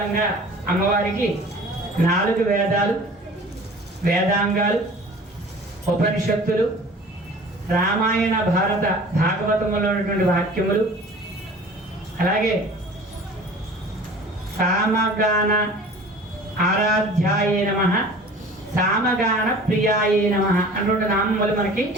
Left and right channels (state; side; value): normal; both; correlation 0.44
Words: అమ్మవారికి 4 వేదాలు, వేదాంగాలు, ఉపనిషత్తులు, రామాయణ భారత భాగవతములో ఉన్నటువంటి వాక్యములు, అలాగే సామగాన ఆరాధ్యాయే నమః, సామగాన ప్రియాయే నమః అన్నటువంటి నామములు మనకి